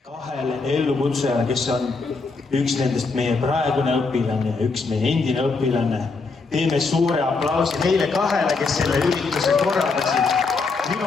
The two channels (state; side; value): quieter; right; 4.2 dB